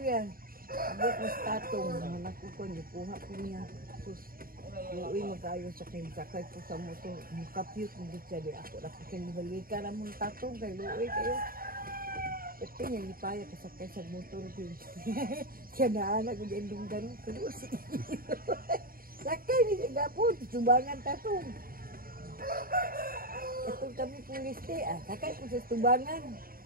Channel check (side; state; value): left; late; 0.42 ms